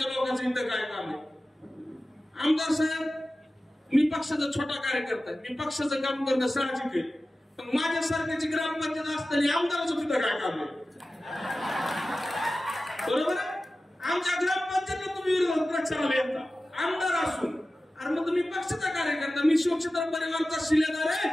लोकांचं इथं काय काम आहे। आमदार साहेब, मी पक्षाचा छोटा कार्यकर्ता आहे, मी पक्षाचं काम करणं साहजिक आहे, पण माझ्यासारख्याची ग्रामपंचायत असताना आमदाराचं तिथं काय काम आहे? बरोबर आहे? आमच्या ग्रामपंचायतीला तुम्ही विरोधात प्रचाराला येता आमदार असून, अरे मग तुम्ही पक्षाचा कार्यकर्ता, मी शिवक्षेत्र परिवाराचा शिलेदार आहे,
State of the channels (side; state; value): both; normal; correlation 0.95